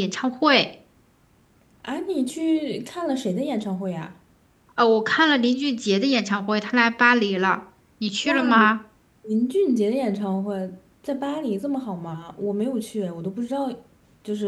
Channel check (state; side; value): identical; both; correlation 1.00